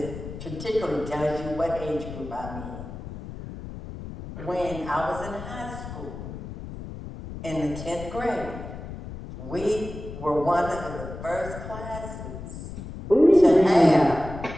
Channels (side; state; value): left; noise; rumble, 11 dB below the sound